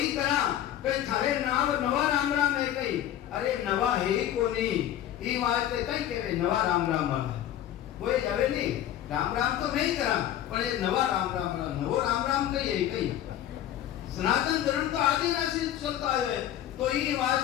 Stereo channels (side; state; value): right; quieter; 11.7 dB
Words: करा कहीं थारे नाव नवा राम राम है कहीं अरे नवा है ही को नहीं ई वास्ते कहीं केवे नवा राम राम वाला वो जावे नहीं राम राम तो मैं ही करा पर ये नवा राम राम वाला नवो राम राम कहीं कहीं सनातन धर्म तो आदिवासी चलता है। तो ये